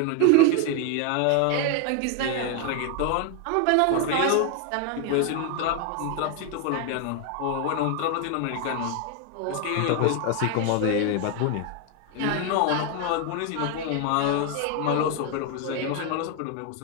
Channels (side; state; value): both; different; correlation 0.01